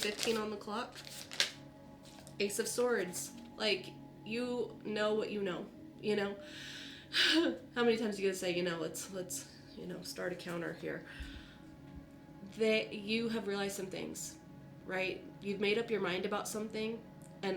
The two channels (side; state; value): both; identical; correlation 1.00